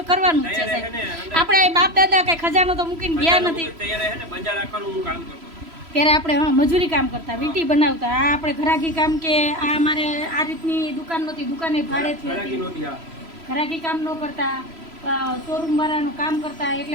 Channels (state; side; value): late; left; 3.0 ms